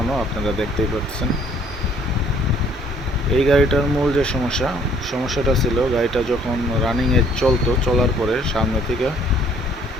আপনারা দেখতেই পাচ্ছেন। এই গাড়িটার মূল যে সমস্যাটা ছিল, গাড়িটা যখন রানিংয়ে চলার পরে সামনে থেকে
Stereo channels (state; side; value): normal; both; correlation 0.60